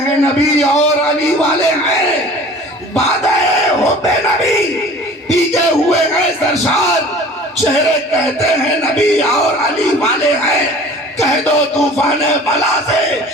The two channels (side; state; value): both; normal; correlation 0.45